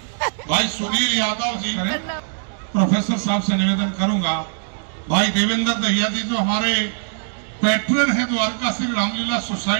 भाई सुनील यादव जी। प्रोफेसर साहब से निवेदन करूंगा, भाई देवेंद्र दहिया जी जो हमारे पैट्रन हैं द्वारका श्री रामलीला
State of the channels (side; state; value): left; silent; digital silence